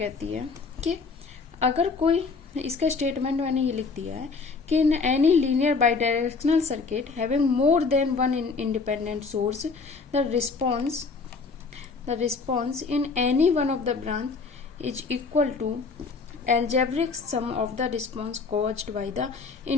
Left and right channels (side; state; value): right; quieter; 4.6 dB